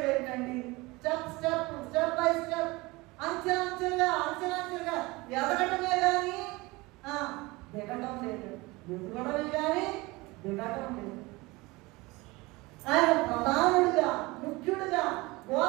ఏంటండి? స్టెప్ బై స్టెప్, అంచెలంచెలుగా ఎదగటమే కానీ దిగటం లేదు, ఎదుగడమే కానీ దిగటం లేదు. ఆయన ప్రధానుడిగా, ముఖ్యుడిగా,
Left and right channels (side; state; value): left; quieter; 22.7 dB